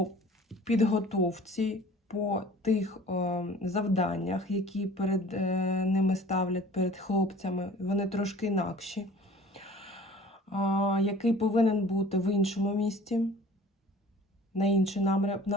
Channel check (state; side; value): normal; both; correlation 0.47